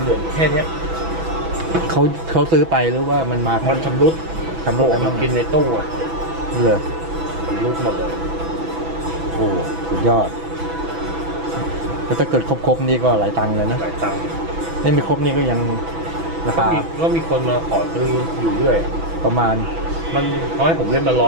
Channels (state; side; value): late; left; 6.1 ms